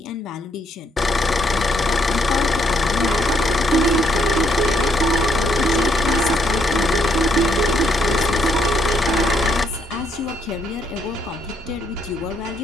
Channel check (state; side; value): normal; both; correlation 0.72